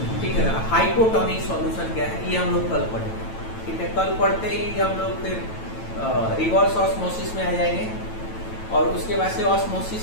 ठीक है ना। हाइपोटोनिक सॉल्यूशन क्या है, ये हम लोग कल पढ़ेंगे, ठीक है। कल पढ़ते ही हम लोग फिर रिवर्स ऑस्मोसिस में आ जाएंगे और उसके बाद से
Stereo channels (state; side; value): late; right; 9.1 ms